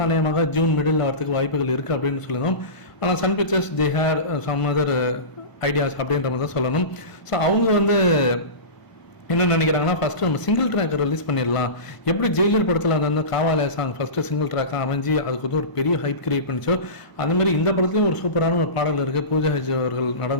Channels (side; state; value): right; late; 1.0 ms